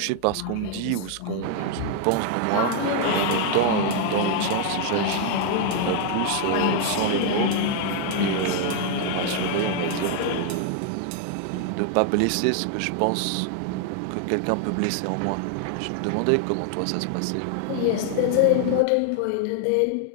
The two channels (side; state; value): both; different; correlation 0.00